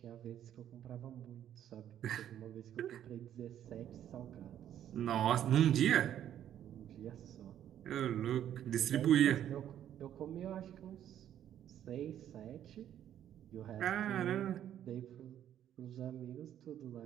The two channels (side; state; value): left; quieter; 10.7 dB